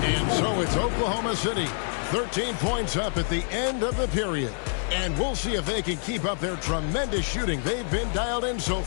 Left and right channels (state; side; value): silent; right; 60 dB below the other